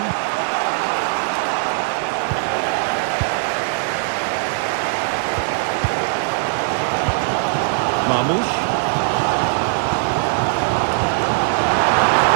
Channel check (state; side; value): silent; left; 62 dB below the other